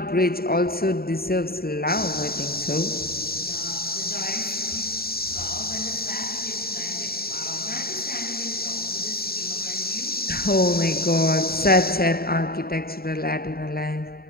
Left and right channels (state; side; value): late; right; 0.44 ms